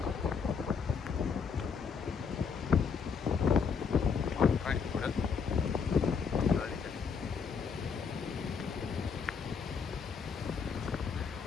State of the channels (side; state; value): right; quieter; 6.0 dB